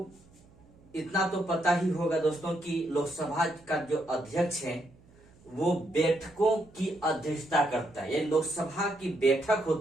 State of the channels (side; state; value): right; noise; hum, 27 dB below the sound